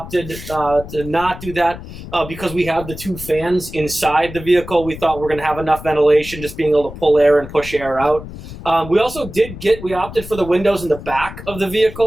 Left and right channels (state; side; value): noise; left; rumble, 13 dB below the sound